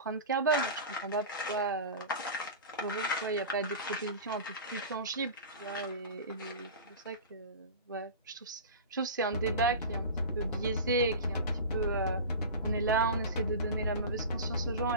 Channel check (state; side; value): inverted; both; correlation -0.30